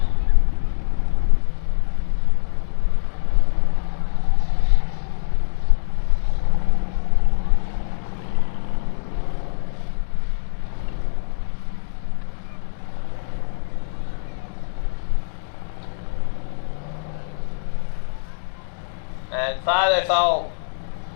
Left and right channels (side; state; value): right; silent; digital silence